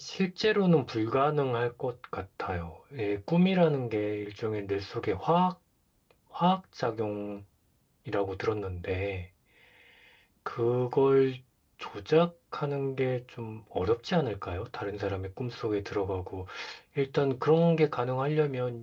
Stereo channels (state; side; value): identical; both; correlation 1.00